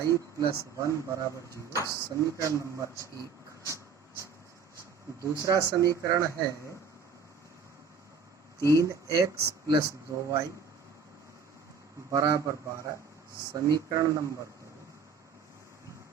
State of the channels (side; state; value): left; quieter; 5.8 dB